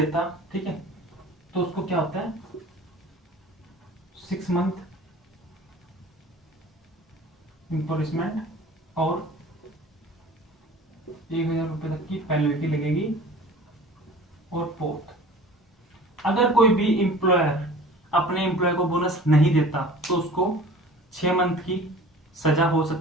ठीक है, तो उसको क्या होता है 6 मंथ इम्पोरिसमेंट और 1000 रुपए तक की पेनल्टी लगेगी। और फोर्थ, अगर कोई भी एम्प्लॉयर अपने एम्प्लॉय को बोनस नहीं देता तो उसको 6 मंथ की सजा हो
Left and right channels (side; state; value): both; normal; correlation 0.44